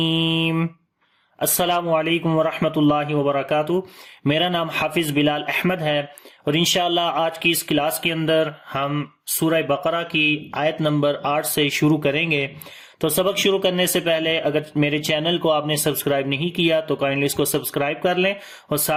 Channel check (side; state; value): both; identical; correlation 1.00